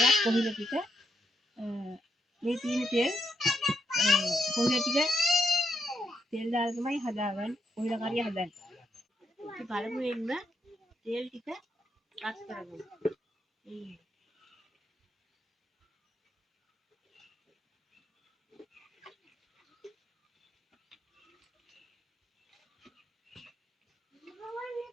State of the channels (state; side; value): normal; both; correlation 0.79